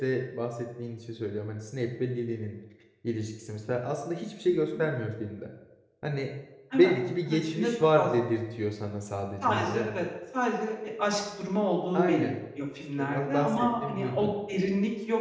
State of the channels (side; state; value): both; identical; correlation 1.00